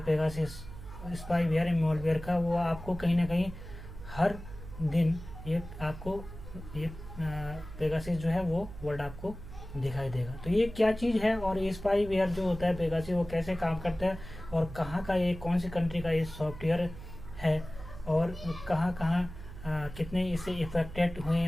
स्पाईवेयर मालवेयर का, वो आपको कहीं ना कहीं हर दिन ये पेगासस जो है वो वर्ड आपको दिखाई देगा। तो ये क्या चीज़ है और ये स्पाईवेयर जो होता है पेगासस वो कैसे काम करता है और कहाँ का ये, कौन सी कंट्री का ये सॉफ्टवेयर है और कहाँ कितने इससे इफेक्टेड हुए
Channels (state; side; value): noise; right; hum, 13 dB below the sound